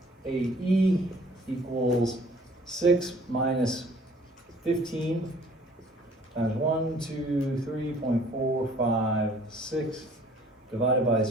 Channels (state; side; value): normal; both; correlation 0.55